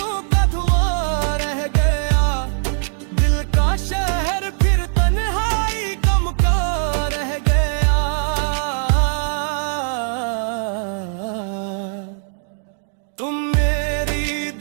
का धुआं रह गया, दिल का शहर फिर तन्हाई गम का रह गया। तुम मेरी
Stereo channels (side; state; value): left; silent; digital silence